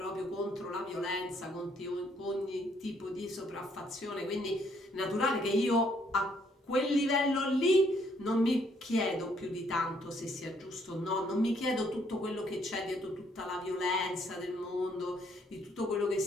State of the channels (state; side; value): normal; both; correlation 0.68